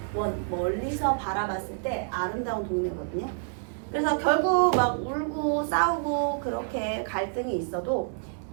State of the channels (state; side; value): silent; left; digital silence